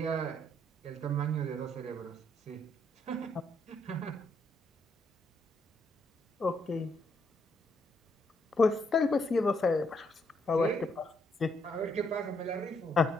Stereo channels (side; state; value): both; normal; correlation 0.74